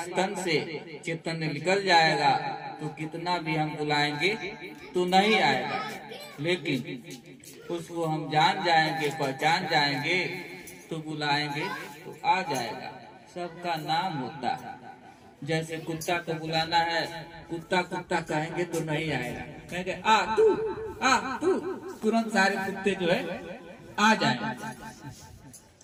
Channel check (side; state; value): both; identical; correlation 1.00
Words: तन से चेतन निकल जाएगा तो कितना भी हम बुलाएंगे तो नहीं आएगा, लेकिन उसको हम जान जाएंगे, पहचान जाएंगे, तो बुलाएंगे तो आ जाएगा। सबका नाम होता है। जैसे कुत्ता को बुलाना है, कुत्ता कुत्ता कहेंगे तो नहीं आएगा, कहेंगे आ तू, तुरंत सारे कुत्ते जो है आ जाएंगे।